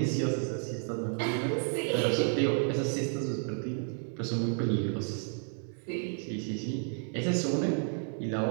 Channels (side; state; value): left; silent; 56 dB below the other